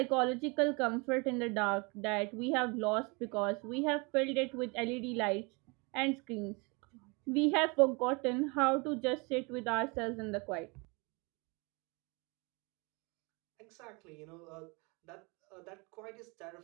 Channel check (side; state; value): left; quieter; 29.5 dB